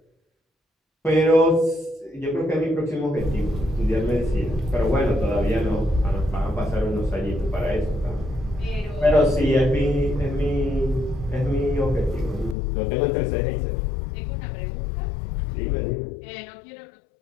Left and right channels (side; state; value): right; drops out; at 12.6 s